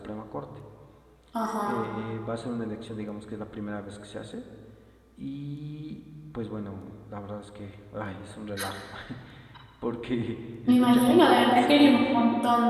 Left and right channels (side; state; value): both; identical; correlation 1.00